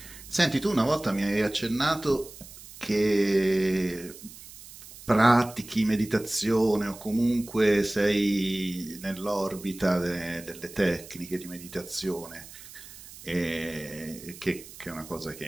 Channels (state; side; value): noise; right; hiss, 17 dB below the sound